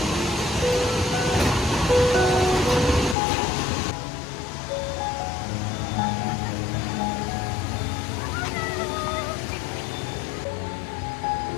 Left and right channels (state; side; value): drops out; right; at 3.2 s